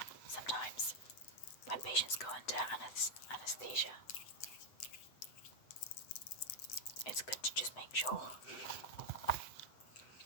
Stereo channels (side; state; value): right; late; 7.9 ms